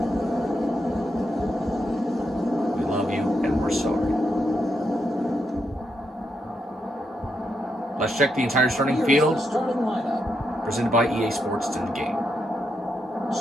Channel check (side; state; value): both; normal; correlation 0.82